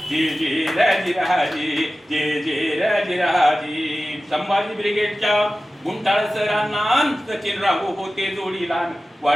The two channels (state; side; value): normal; both; correlation 0.95